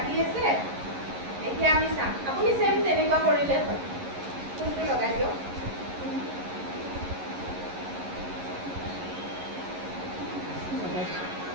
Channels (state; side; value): late; left; 11 ms